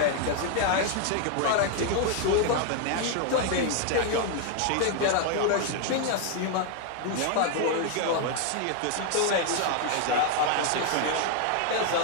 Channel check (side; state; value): both; different; correlation 0.00